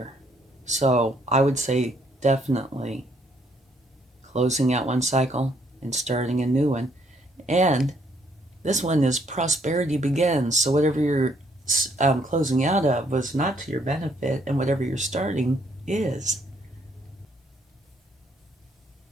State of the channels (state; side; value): normal; both; correlation 0.69